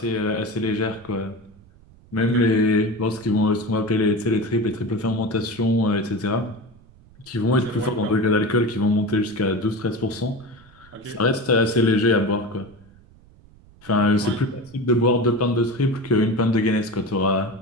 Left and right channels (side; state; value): right; noise; rumble, 26 dB below the sound